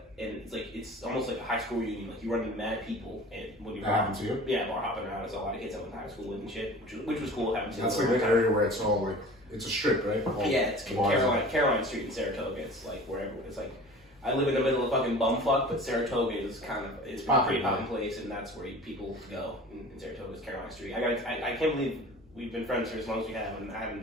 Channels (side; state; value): both; normal; correlation 0.41